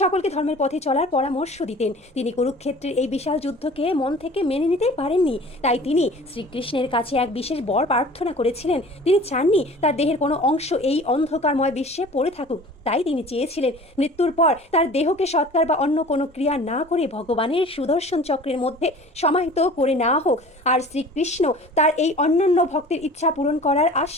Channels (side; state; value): both; normal; correlation 0.44